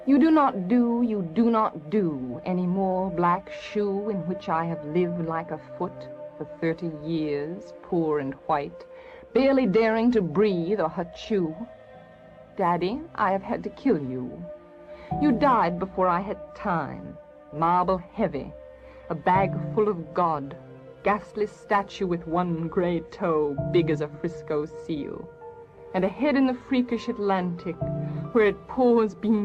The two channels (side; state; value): both; identical; correlation 1.00